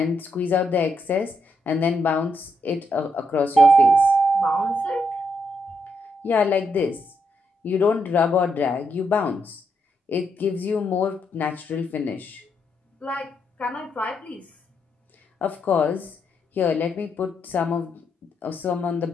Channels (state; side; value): normal; both; correlation 0.79